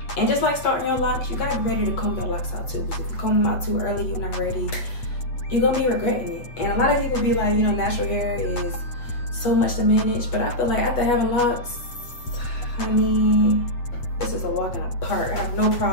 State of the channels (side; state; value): right; late; 8.1 ms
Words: And just like starting your locks, you gotta be ready to comb your locks out too. Because if you comb them out too early, you're not ready, you're gonna be regretting it. And a lot of people be like, natural hair is so much to manage. But I feel like after having locks, honey, this is a walk in the park. I have no